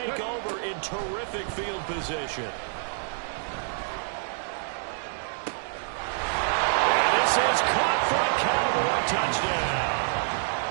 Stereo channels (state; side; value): silent; left; digital silence